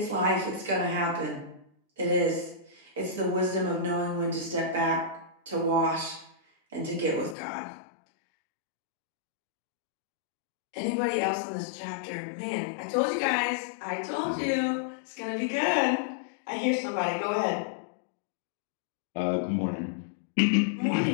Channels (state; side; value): drops out; right; at 7.4 s